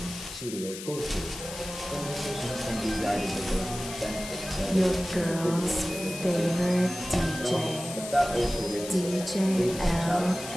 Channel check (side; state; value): left; noise; hiss, 10 dB below the sound